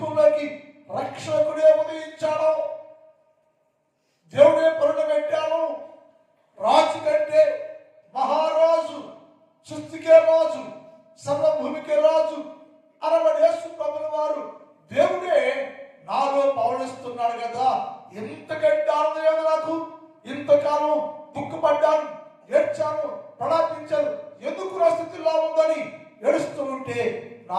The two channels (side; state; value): both; identical; correlation 1.00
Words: రక్షకుడే ఉదయించాడు. దేవుడే పండబెట్టాను. రాజు కంటే మహారాజు, సృష్టికే రాజు, సర్వభూమికే రాజు అనబడి యేసు ప్రభుల వారు దేవుడే నాలో పవనిస్తున్నాడు కదా. ఎంతకంటే ఆనందం నాకు. ఇంతకాలం దుఃఖపడ్డాను, ఏడ్చాను, ప్రలాపించాను, ఎందుకు నా స్థితిలో ఉందని ఏడుస్తూ ఉంటే,